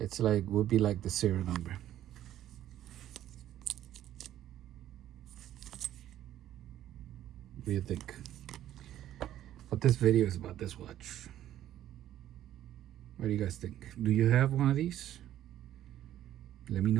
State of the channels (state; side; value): quieter; left; 12.3 dB